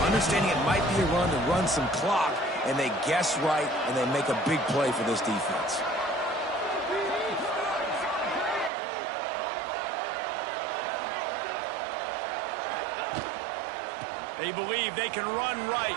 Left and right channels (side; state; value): left; drops out; at 8.7 s